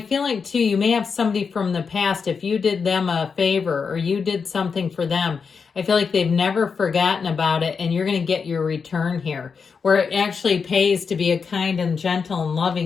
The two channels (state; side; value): quieter; right; 5.6 dB